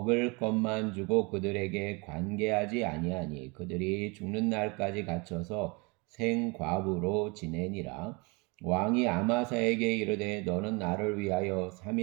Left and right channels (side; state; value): left; quieter; 28.7 dB